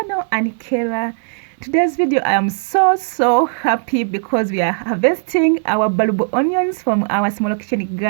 Anikera. Today's video I am so happy because we are harvesting our bulb onions from our small kitchen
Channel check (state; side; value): silent; left; digital silence